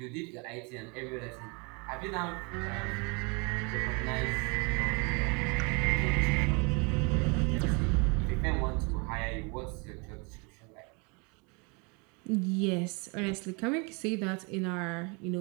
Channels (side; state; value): left; quieter; 31.6 dB